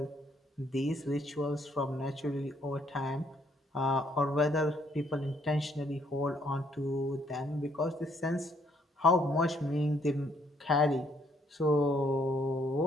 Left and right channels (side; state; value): both; normal; correlation 0.69